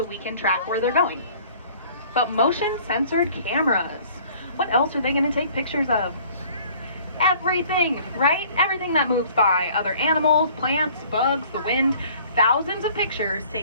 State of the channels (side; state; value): both; inverted; correlation -0.53